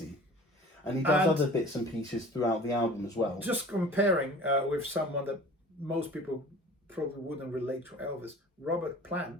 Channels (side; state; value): both; normal; correlation 0.44